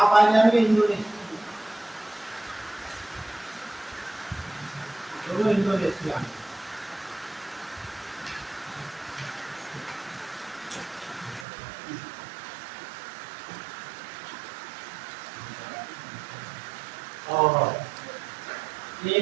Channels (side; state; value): left; drops out; at 11.5 s